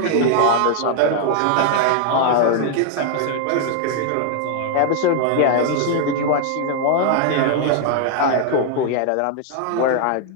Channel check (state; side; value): different; both; correlation 0.00